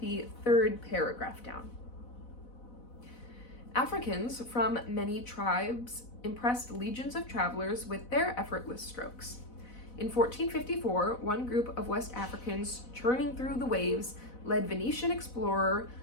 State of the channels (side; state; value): right; late; 4.0 ms